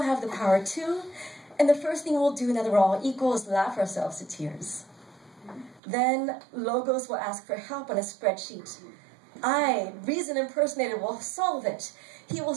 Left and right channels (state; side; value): drops out; left; at 5.8 s